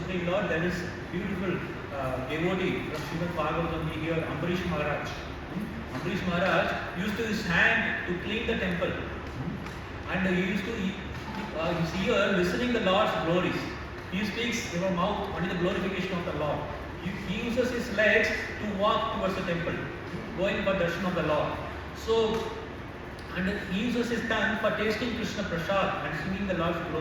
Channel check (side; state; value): both; identical; correlation 1.00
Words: Lord. There is beautiful devotee from Srimad Bhagavad here, Ambarish Maharaj. Ambarish Maharaj used to his hand to clean the temple, and he used to his ear listening the Lord's glories. He speaks in his mouth only the glorification of the Lord. He uses his legs to walk towards the temple, going for darshan of the Lord. So, and he uses his tongue for tasting Krishna Prasad and singing the Lord's